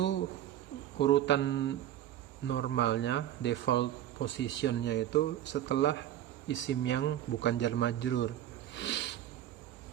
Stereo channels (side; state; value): left; quieter; 12.1 dB